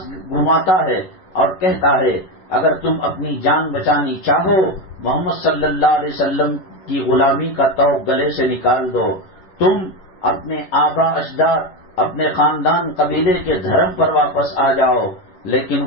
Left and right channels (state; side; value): late; right; 11 ms